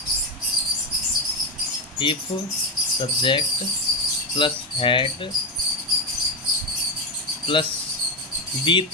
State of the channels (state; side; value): normal; both; correlation 0.09